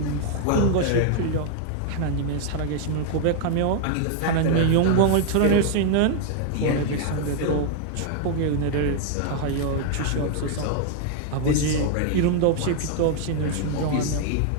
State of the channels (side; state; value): both; different; correlation 0.00